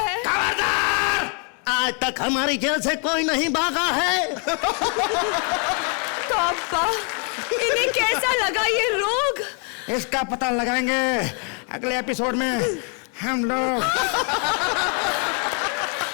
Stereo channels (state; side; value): quieter; right; 39.4 dB